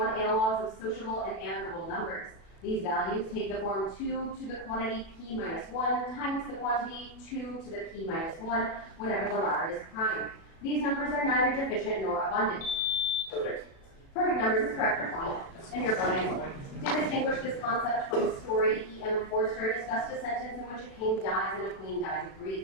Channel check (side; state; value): right; late; 36 ms